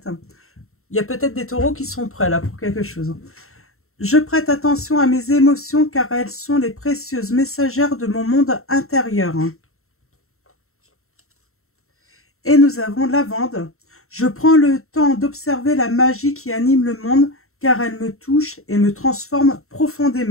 Il y a peut-être des taureaux qui sont prêts là pour quelque chose. Je prête attention à mes émotions car elles sont les précieuses messagères de mon monde intérieur. Et nous avons Lavande. Je prends le temps d'observer la magie qui anime le monde car elle me touche et me transforme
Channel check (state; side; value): late; right; 0.63 ms